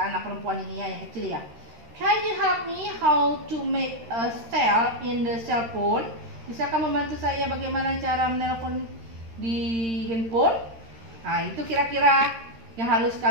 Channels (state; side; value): late; left; 13 ms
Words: anak perempuan ini ya, yang kecil ya. Can you help me how to make a cell in the cell phone? Bisakah membantu saya bagaimana cara menelpon di handphone? Nah, itu kira-kira yang harus